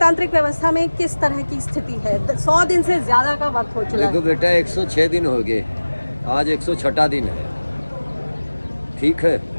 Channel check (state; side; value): inverted; both; correlation -1.00